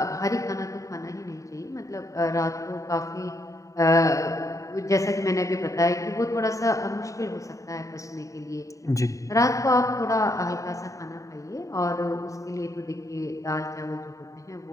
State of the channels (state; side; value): late; right; 0.16 ms